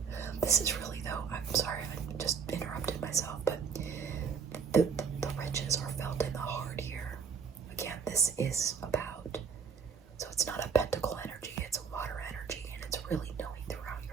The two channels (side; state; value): left; quieter; 6.2 dB